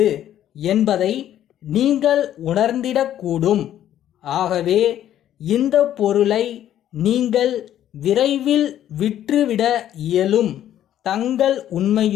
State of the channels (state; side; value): quieter; right; 11.4 dB